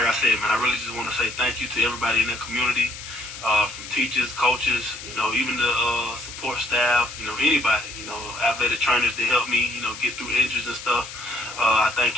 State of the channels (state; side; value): noise; left; hiss, 12 dB below the sound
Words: I said, man, I really just want to say thank you to everybody in the community, from teachers, coaches, even the support staff, anybody, athletic trainers that help me, get through injuries and stuff. I